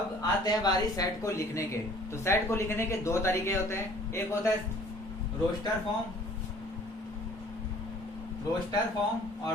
आते हैं बारी सेट को लिखने के। तो सेट को लिखने के दो तरीके होते हैं। एक होता है रोस्टर फॉर्म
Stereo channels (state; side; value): normal; both; correlation 0.53